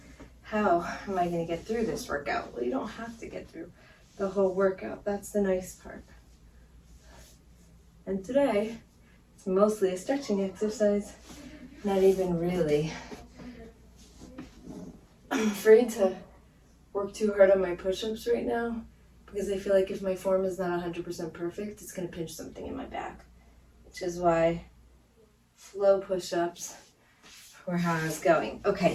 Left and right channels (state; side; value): identical; both; correlation 1.00